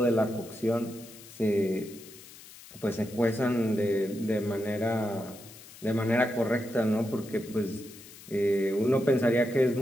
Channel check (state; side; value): noise; left; hiss, 19 dB below the sound